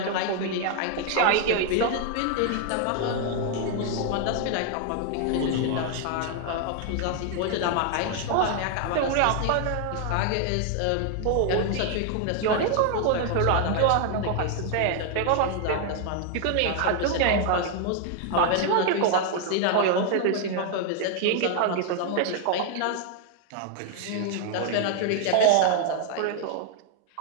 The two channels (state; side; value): different; both; correlation 0.00